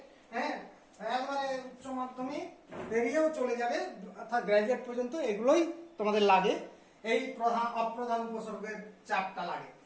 হ্যাঁ, একবারে উচ্চ মাধ্যমিক বেরিয়েও চলে যাবে, অর্থাৎ গ্রাজুয়েট পর্যন্ত এগুলোই তোমাদের লাগে। এই প্রধান অপ্রধান উপসর্গের চারটা লাগে।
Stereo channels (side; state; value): both; identical; correlation 1.00